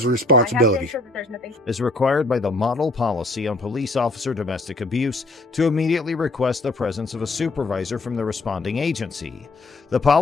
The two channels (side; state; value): right; quieter; 3.1 dB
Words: the I responsibility. have to ensure that there's nothing. Is required by the model policy on police officer domestic abuse to immediately request the presence of a supervisor from the responding agency. The